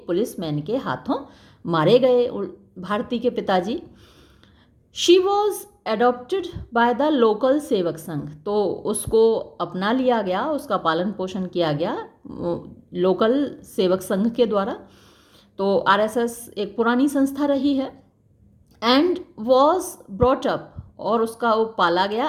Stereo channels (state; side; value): identical; both; correlation 1.00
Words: पुलिसमैन के हाथों मारे गए भारती के पिताजी। She was adopted by the local Sevak Sangh, तो उसको अपना लिया गया, उसका पालन पोषण किया गया लोकल सेवक संघ के द्वारा। तो आरएसएस एक पुरानी संस्था रही है। एंड वॉज ब्रॉट अप, और उसका वो पाला गया,